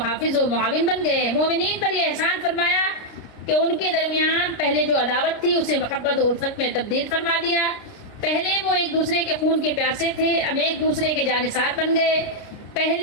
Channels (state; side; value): late; right; 29 ms